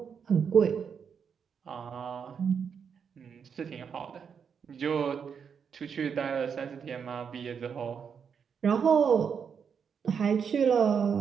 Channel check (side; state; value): left; quieter; 6.8 dB